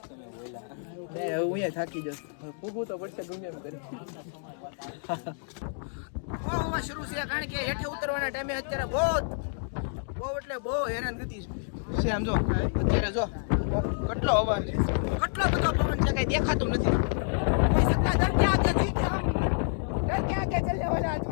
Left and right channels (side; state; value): right; silent; digital silence